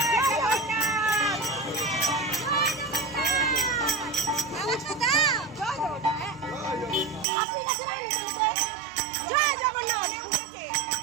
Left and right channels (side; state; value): left; drops out; at 7.2 s